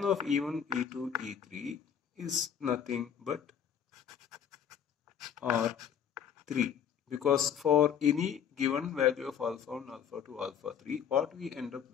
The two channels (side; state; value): right; quieter; 8.3 dB